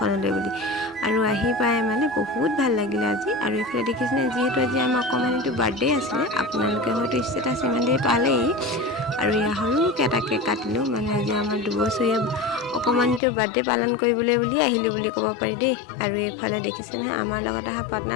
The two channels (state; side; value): drops out; right; at 13.2 s